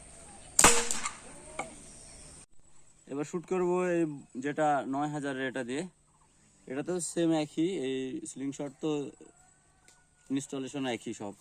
এবার শুট করবো এই যেটা ৯,০০০ এটা দিয়ে। এটা তো সেম একই, এই সিলিং শট তো ইনস্টলেশন একই সব।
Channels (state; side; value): identical; both; correlation 1.00